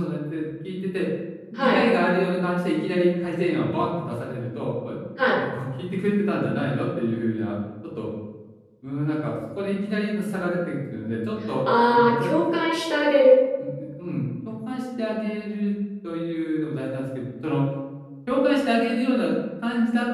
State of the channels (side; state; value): both; identical; correlation 1.00